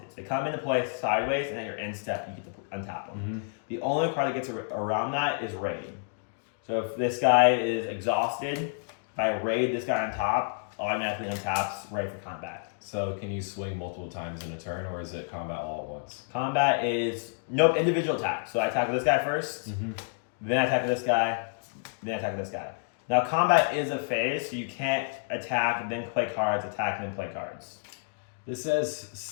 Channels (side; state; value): right; silent; digital silence